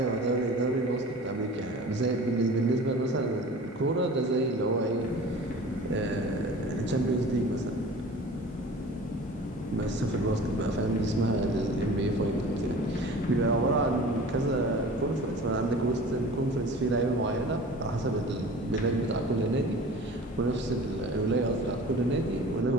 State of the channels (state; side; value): normal; both; correlation 0.41